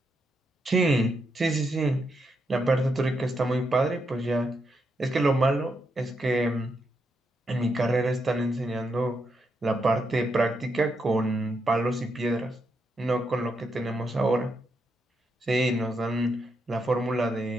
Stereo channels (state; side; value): normal; both; correlation 0.81